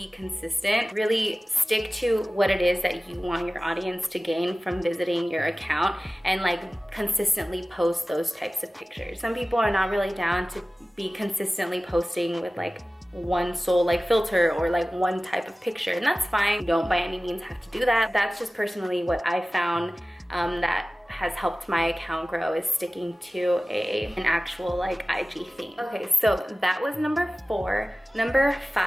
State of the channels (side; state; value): both; normal; correlation 0.97